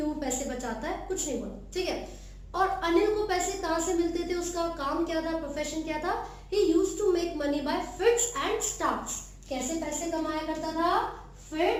पैसे बचाता है, कुछ नहीं बोला। ठीक है, और अनिल को पैसे कहाँ से मिलते थे, उसका काम क्या था, प्रोफेशन क्या था, he used to make money by fits and starts. कैसे पैसे कमाया करता था,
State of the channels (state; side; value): identical; both; correlation 1.00